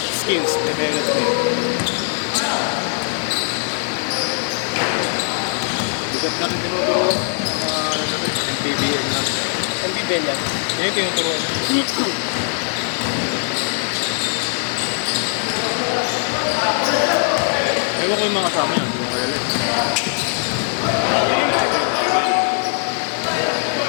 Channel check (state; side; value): silent; right; 58 dB below the other